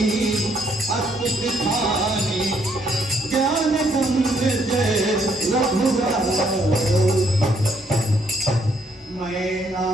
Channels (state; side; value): normal; both; correlation 0.70